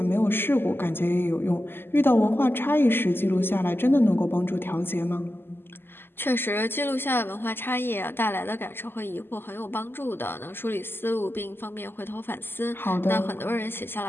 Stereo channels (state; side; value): late; right; 0.10 ms